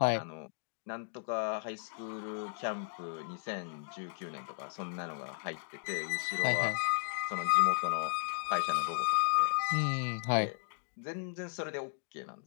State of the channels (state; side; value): silent; right; digital silence